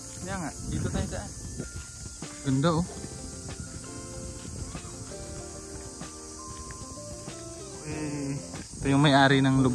Kaya nga, dito tayo daan. Ganda oh. Ito yung may-ari ng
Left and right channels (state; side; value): identical; both; correlation 1.00